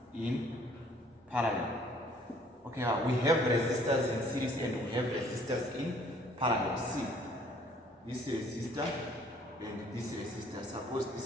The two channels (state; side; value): normal; both; correlation 0.58